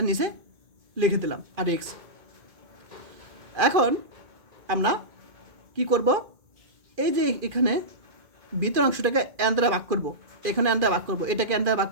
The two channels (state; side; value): late; left; 2.5 ms